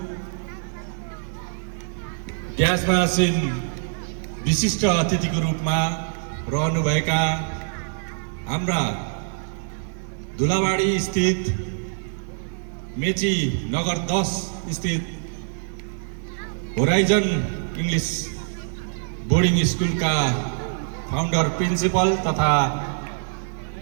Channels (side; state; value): left; silent; digital silence